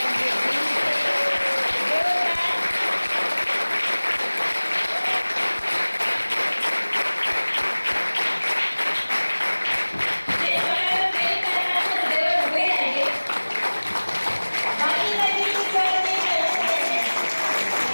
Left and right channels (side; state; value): both; inverted; correlation -1.00